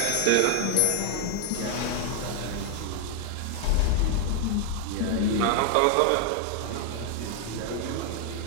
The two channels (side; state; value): both; different; correlation 0.00